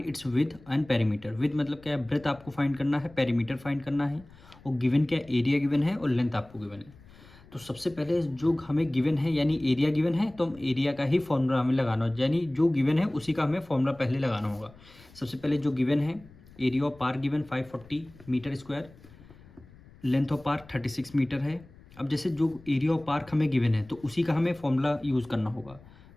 its width and perimeter. Width मतलब क्या है, ब्रेथ आपको फाइंड करना है, पेरीमीटर फाइंड करना है, और गिवन क्या एरिया गिवन है और लेंथ आपको गिवन है। तो सबसे पहले जो हमें गिवन है यानी एरिया गिवन है, तो हम एरिया का ही फॉर्मूला हमें लगाना हो, यानी जो गिवन है उसी का हमें फॉर्मूला पहले लगाना होगा। सबसे पहले जो गिवन है, area of park given 540 metre square, length of park 36 metre है। अब जैसे जो एरिया ऑफ पार्क हमें गिवन है तो उसी का हमें फॉर्मूला यूज़ करना होगा।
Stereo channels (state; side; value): noise; left; rumble, 23 dB below the sound